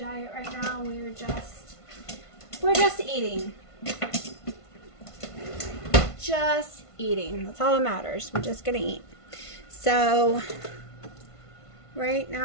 right now. We're just eating. Just eating. That's all that matters. We're just gonna eat. So, right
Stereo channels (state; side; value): late; right; 1.5 ms